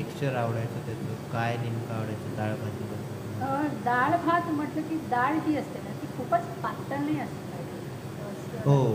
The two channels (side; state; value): both; identical; correlation 1.00